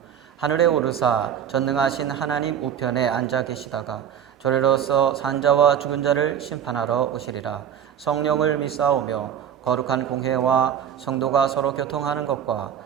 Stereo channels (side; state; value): left; quieter; 9.0 dB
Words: 하늘에 오르사 전능하신 하나님 우편에 앉아 계시다가 저리로서 산자와 죽은 자를 심판하러 오시리라. 성령을 믿사오며 거룩한 공회와 성도가 서로 교통하는 것과